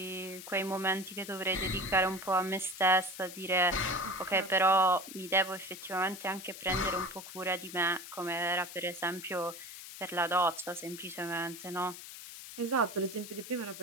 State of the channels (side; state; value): left; noise; hiss, 12 dB below the sound